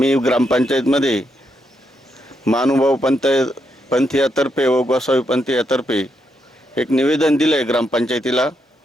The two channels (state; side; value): normal; both; correlation 0.80